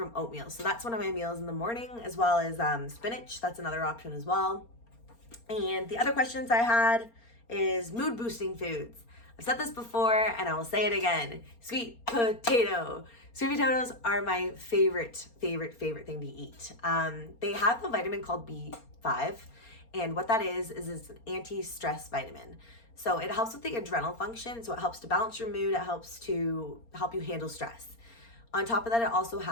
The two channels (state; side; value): late; right; 4.3 ms